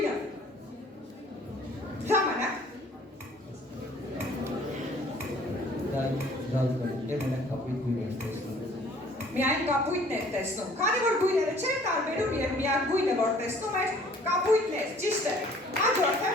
Ժամանակ։ Միայն կապույտն էր տեսնում, քանի որ գույները չէր տարբերում և միակ գույնը, որ տեսնում էր, կապույտն էր, ճիշտ է։ Հաջորդը։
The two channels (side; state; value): both; normal; correlation 0.55